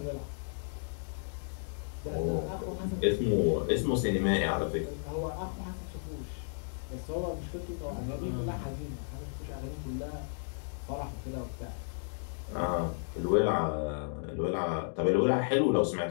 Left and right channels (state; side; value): silent; right; digital silence